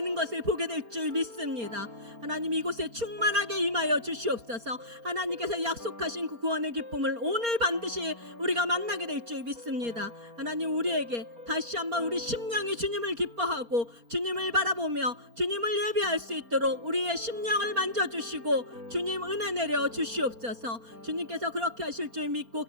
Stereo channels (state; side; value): late; left; 4.3 ms